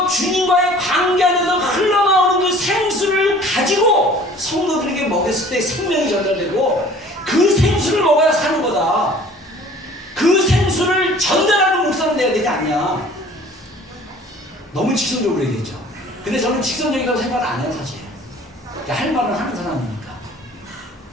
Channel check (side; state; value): both; normal; correlation 0.50